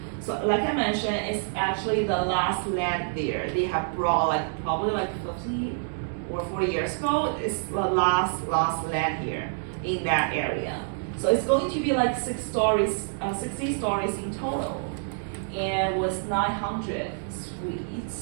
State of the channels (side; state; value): left; silent; digital silence